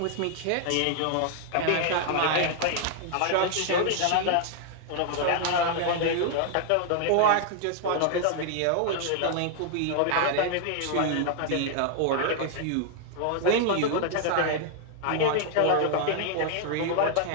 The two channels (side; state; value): both; different; correlation 0.00